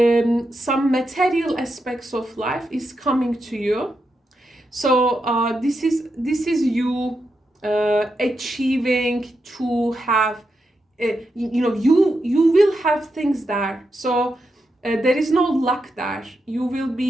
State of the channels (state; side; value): normal; both; correlation 0.85